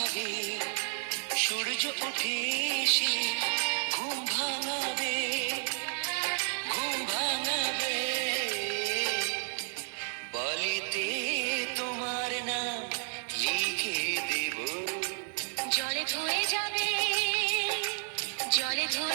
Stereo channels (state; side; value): silent; left; digital silence